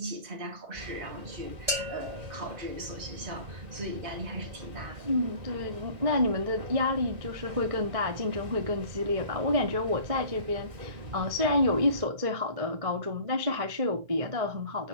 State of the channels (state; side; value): late; left; 2.1 ms